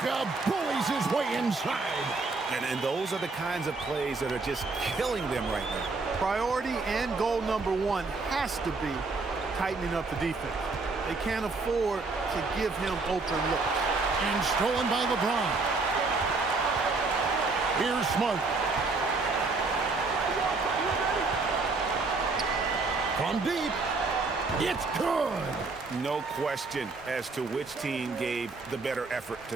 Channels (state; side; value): quieter; left; 3.9 dB